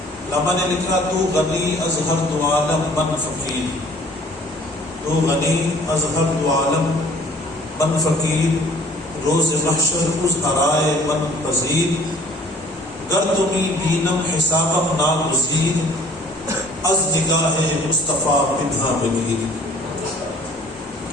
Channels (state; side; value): normal; both; correlation 0.54